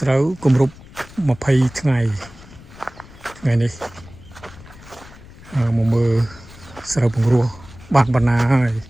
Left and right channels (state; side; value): noise; left; rumble, 20 dB below the sound